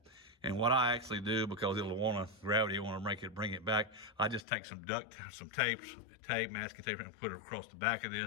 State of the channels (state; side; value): drops out; right; at 4.5 s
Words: And what I actually do, because gravity will want to bring it back, I just take some tape, masking tape, and put it across the back of